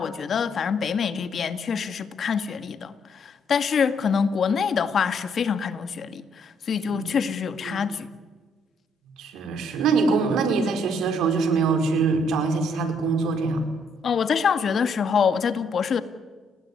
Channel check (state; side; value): normal; both; correlation 0.70